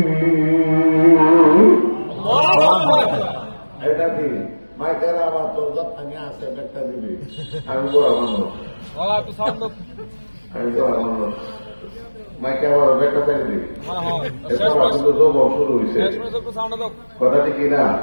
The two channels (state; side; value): inverted; both; correlation -1.00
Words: এটা কি মাইকের আবার তোর যত্ন আছে একটা দিবি আমি বড় মানুষ আমি বড় মানুষ মাইকে আবার ব্যাখ্যা চাই দিবি কিন্তু যোগ শুরু হয়েছে কথাটি কি না